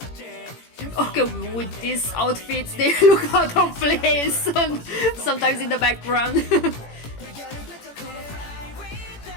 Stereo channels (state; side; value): late; right; 18 ms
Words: Okay, with these outfits, they look out of place sometimes in the background.